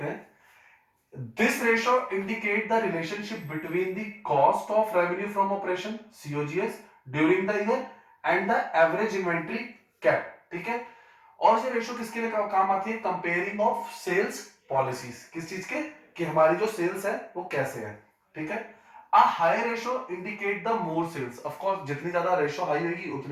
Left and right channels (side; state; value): both; identical; correlation 1.00